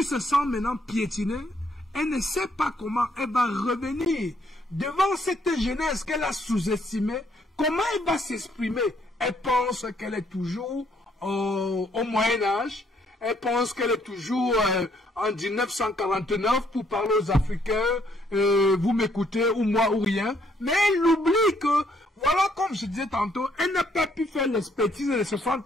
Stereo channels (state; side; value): normal; both; correlation 0.69